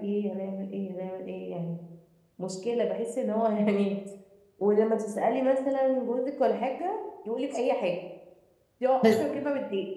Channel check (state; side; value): identical; both; correlation 1.00